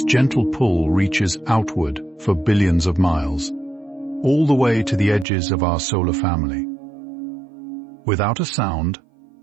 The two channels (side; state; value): left; drops out; at 5.2 s